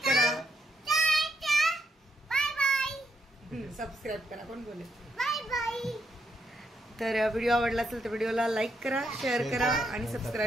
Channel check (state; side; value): normal; both; correlation 0.78